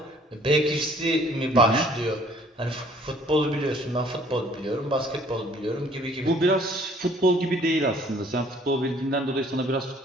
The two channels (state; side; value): normal; both; correlation 0.58